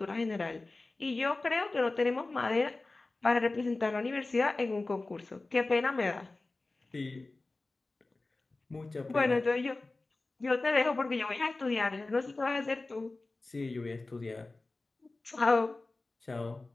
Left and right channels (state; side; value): quieter; right; 3.3 dB